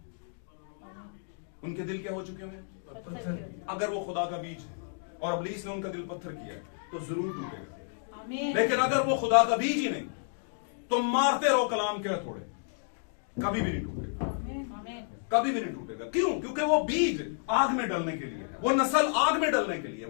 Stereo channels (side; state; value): right; silent; digital silence